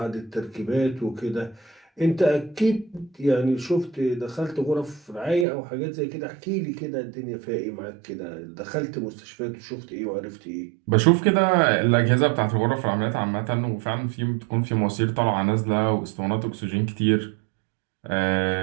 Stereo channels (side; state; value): left; drops out; at 5.5 s